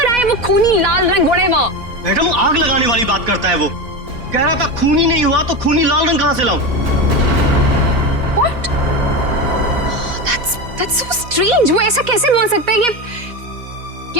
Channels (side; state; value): left; late; 4.1 ms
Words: आए वो खूनी लाल रंग घोड़े वो। मैडम, आग लगाने वाली बात करता है वो। कह रहा था खूनी नहीं हुआ तो खूनी लाल रंग कहाँ से लाऊं? What? That's so strange. वो ऐसा कैसे बोल सकता है